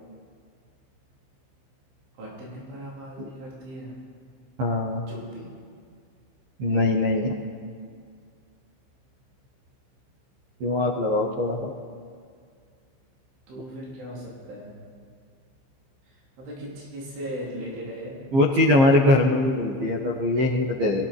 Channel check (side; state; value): left; late; 15 ms